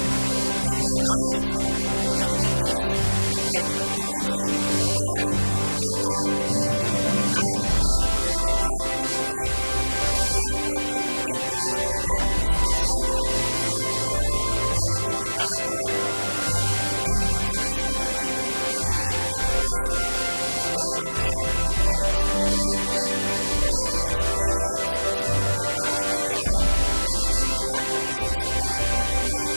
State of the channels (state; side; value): inverted; both; correlation -1.00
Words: to open your eyes sa mga opportunities na pwede nyong gawin sa inyong buhay at to give you time to reflect and think of what you can do in your lives. At sana sa darating na panahon, magkaroon din kayo ng sarili-sarili nyong maliliit na negosyo, lalaki afterwards, katulad din nung aming experience ni Senator Manny Villar na nagsimula kami sa isang maliit na